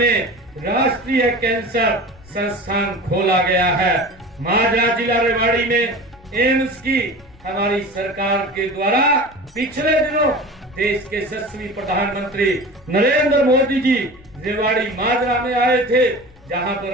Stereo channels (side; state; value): left; noise; rumble, 25 dB below the sound